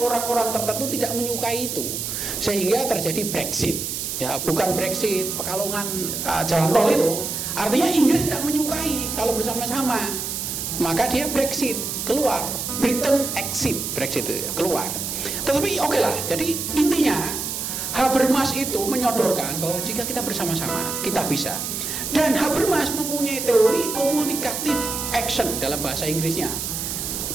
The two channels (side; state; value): right; noise; hiss, 4 dB below the sound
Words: tertentu tidak menyukai itu. Sehingga terjadi Brexit. Ya, bukan Brexit, Pekalongan jalan tol itu. Artinya Inggris tidak menyukai kalau bersama-sama. Maka dia Brexit, keluar. Britain exit, Brexit itu keluar. Tetapi oke lah, jadi intinya Habermas itu menyodorkan bahwa jika kita bersama-sama, kita bisa. Dan Habermas mempunyai teori communicative action dalam bahasa Inggrisnya.